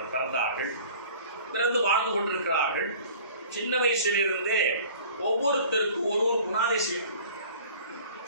பிறந்தார்கள். பிறந்து வாழ்ந்து கொண்டிருக்கிறார்கள். சின்ன வயசிலிருந்தே ஒவ்வொருத்தருக்கும் ஒரு குணாதிசயம்.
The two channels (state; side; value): inverted; both; correlation -0.47